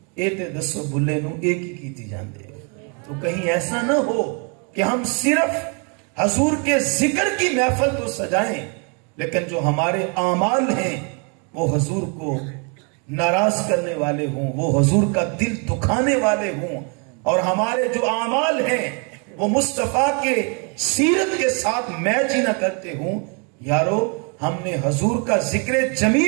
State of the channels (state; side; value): quieter; left; 35.8 dB